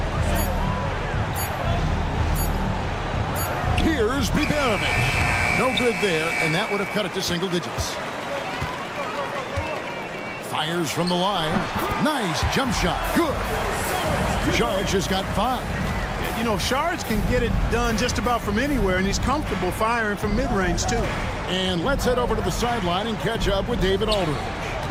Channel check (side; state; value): both; identical; correlation 1.00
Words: Here's Biberovic. No good there, and that would have cut it to single digits. Fires from the line. Nice jump shot. Good. Charge has got 5. You know, Shards can get it done just about from anywhere, and he's comfortable firing from mid-range, too. And let's head over to the sideline and catch up with David Aldridge.